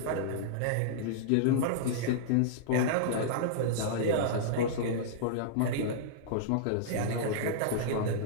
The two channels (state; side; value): different; both; correlation -0.02